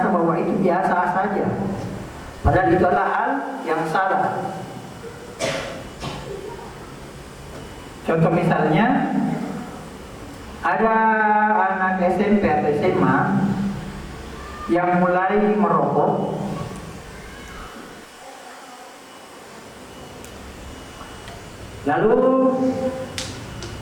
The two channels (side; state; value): both; identical; correlation 1.00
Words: bahwa itu biasa saja, padahal itu adalah hal yang salah. Contoh misalnya, ada anak SMP atau SMA yang mulai merokok, lalu